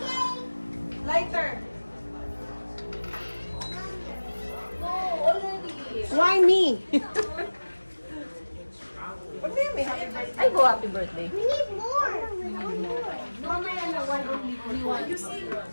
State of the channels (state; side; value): inverted; both; correlation -1.00